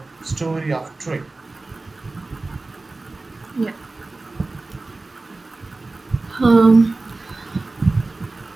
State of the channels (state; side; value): quieter; left; 3.3 dB